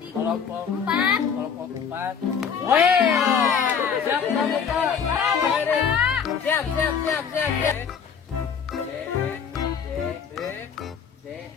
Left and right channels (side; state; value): right; quieter; 6.9 dB